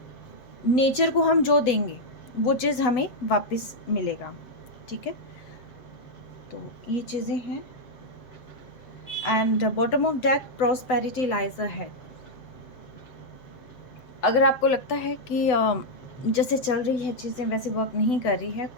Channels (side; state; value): right; late; 8.0 ms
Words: नेचर को हम जो देंगे वो चीज़ हमें वापस मिलेगा। ठीक है, तो ये चीज़ें हैं। And bottom of deck, prosperity lies ahead. अगर आपको लगता है कि जैसे चल रही है चीज़ें वैसे वर्क नहीं कर रही है,